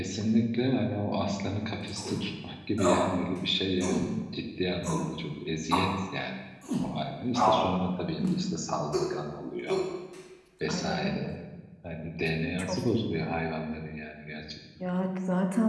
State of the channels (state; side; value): identical; both; correlation 1.00